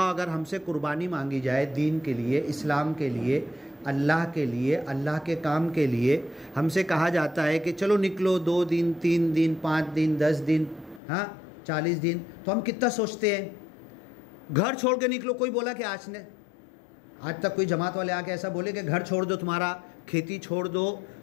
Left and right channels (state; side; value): drops out; right; at 11.0 s